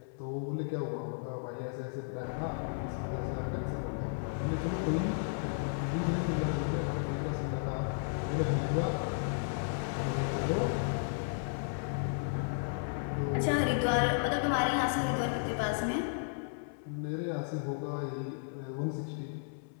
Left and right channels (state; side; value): silent; right; 55 dB below the other